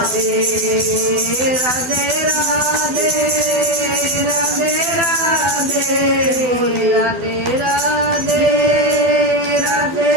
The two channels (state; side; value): late; left; 12 ms